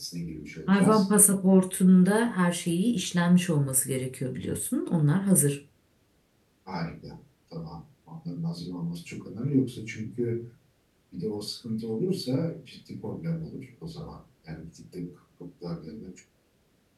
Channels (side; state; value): both; identical; correlation 1.00